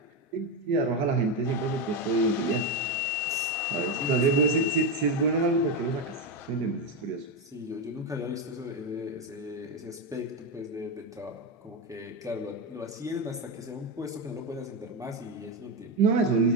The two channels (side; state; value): both; normal; correlation 0.10